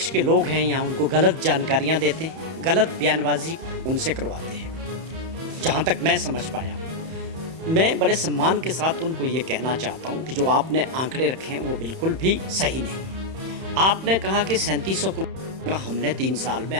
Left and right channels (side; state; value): left; late; 31 ms